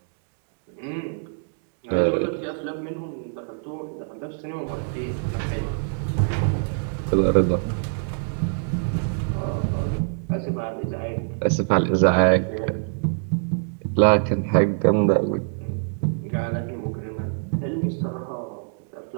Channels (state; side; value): silent; left; digital silence